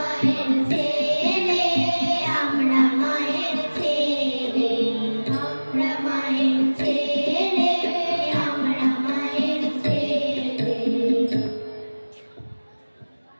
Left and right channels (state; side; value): inverted; both; correlation -1.00